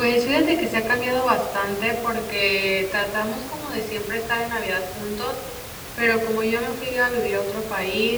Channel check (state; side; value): identical; both; correlation 1.00